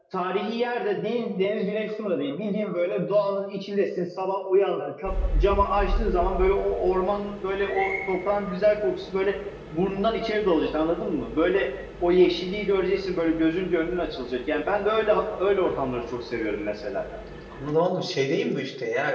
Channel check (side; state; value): both; identical; correlation 1.00